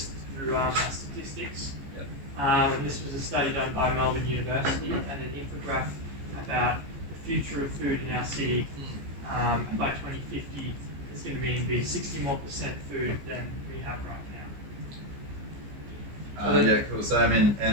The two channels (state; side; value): late; left; 15 ms